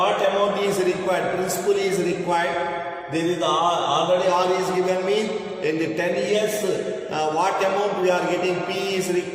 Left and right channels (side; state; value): both; identical; correlation 1.00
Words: amount is required, principal is required. There is already R is given me in the 10 years what amount we are getting, P is